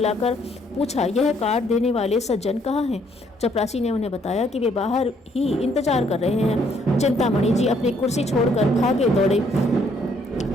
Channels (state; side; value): normal; both; correlation 0.67